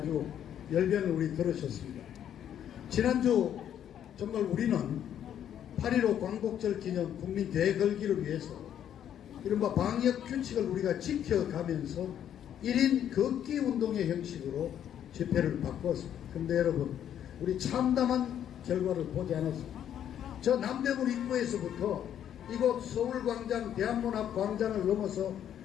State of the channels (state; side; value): quieter; right; 10.0 dB